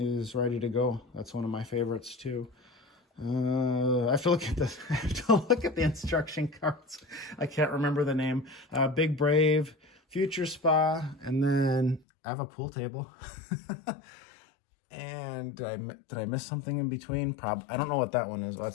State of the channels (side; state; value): right; drops out; at 12.0 s